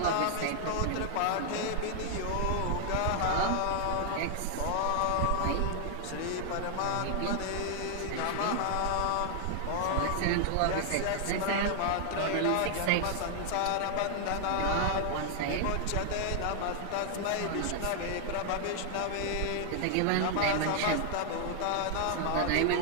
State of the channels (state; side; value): different; both; correlation 0.00